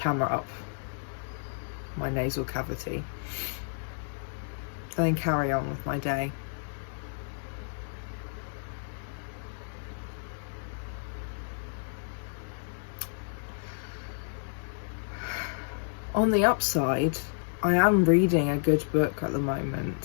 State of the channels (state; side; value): silent; right; digital silence